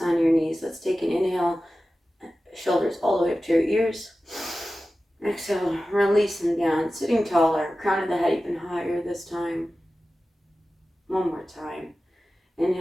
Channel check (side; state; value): both; normal; correlation 0.95